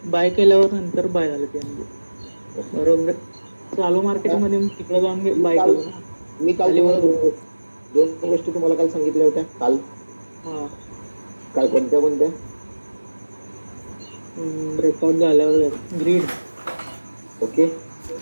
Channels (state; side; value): inverted; both; correlation -1.00